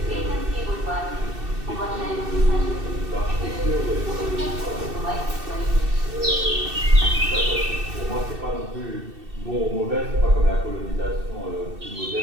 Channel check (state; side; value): late; left; 2.7 ms